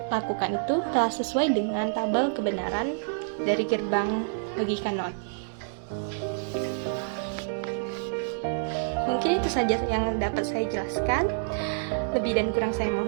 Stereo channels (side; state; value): left; silent; 60 dB below the other